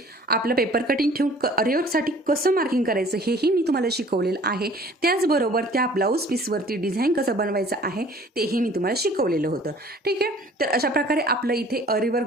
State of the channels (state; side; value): normal; both; correlation 0.51